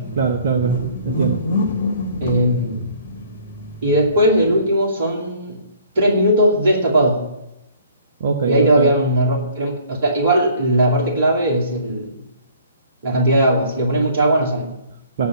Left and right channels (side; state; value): both; inverted; correlation -0.56